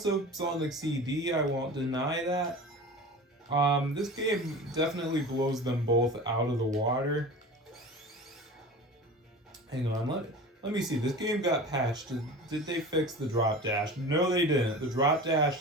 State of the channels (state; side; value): normal; both; correlation 0.35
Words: Sonic CD, I won't deny that. This game definitely blows them both out of the water. Hang on, let me see. This game got patched. Did they fix the drop dash? No, they didn't. The drop